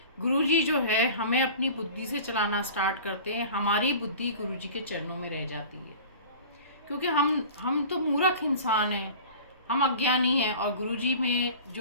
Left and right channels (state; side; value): inverted; both; correlation -0.39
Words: गुरुजी जो है हमें अपनी बुद्धि से चलाना स्टार्ट करते हैं। हमारी बुद्धि गुरुजी के चरणों में रह जाती है, क्योंकि हम तो मूर्ख इंसान हैं, हम अज्ञानी हैं, और गुरुजी में